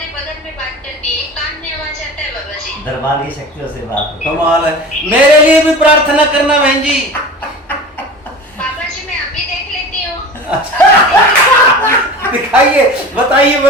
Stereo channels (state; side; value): normal; both; correlation 0.35